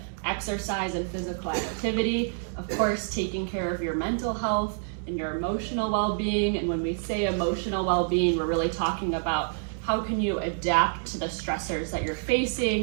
exercise and physical activity, of course, taking care of your mental health and your emotional well-being. And when we say emotional well-being, we're really talking about how can you adapt to the stressors that you're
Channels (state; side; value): silent; left; digital silence